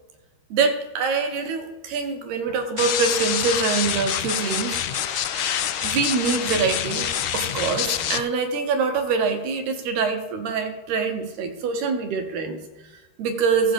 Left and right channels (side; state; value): left; late; 13 ms